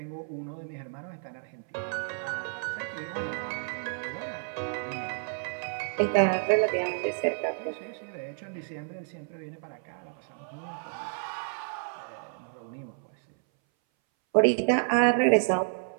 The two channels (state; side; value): silent; left; 58 dB below the other